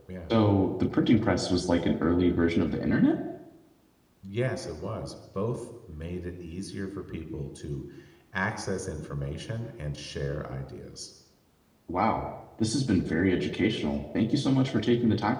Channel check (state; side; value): identical; both; correlation 1.00